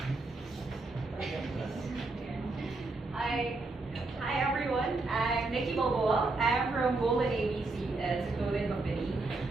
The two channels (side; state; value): left; quieter; 3.3 dB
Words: Hi everyone. I'm Nikki Balboa. I'm from Golden ABC as a clothing company.